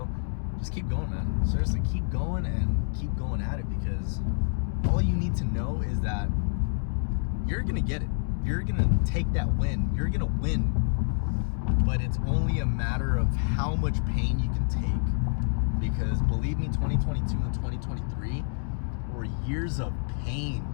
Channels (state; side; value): silent; right; digital silence